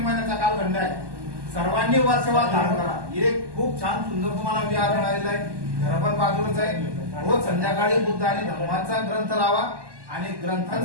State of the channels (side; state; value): left; late; 1.2 ms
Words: कालखंड आहे, सर्वांनी वर्षवास धारण करा. हे खूप छान सुंदर तुम्हाला विहार मिळालेला आहे. घर पण बाजूलाच आहे. रोज संध्याकाळी बुद्ध आणि धम्माचा ग्रंथ लावा आणि